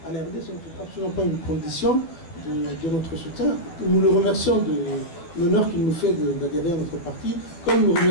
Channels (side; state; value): right; late; 12 ms